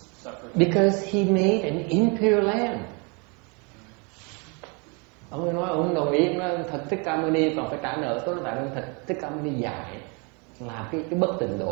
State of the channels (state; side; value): quieter; left; 32.8 dB